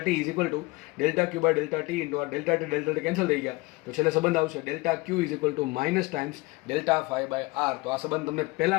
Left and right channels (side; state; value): right; quieter; 22.9 dB